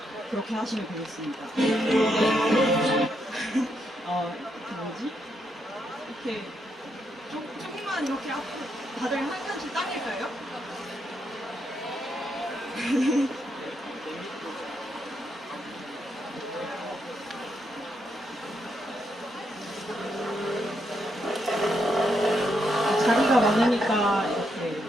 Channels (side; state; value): both; normal; correlation 0.79